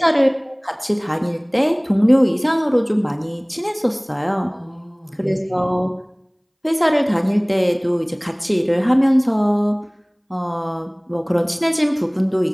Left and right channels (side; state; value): both; identical; correlation 1.00